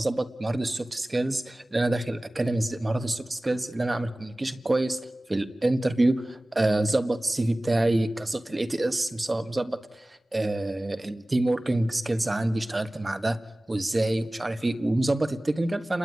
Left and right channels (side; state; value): both; normal; correlation 0.98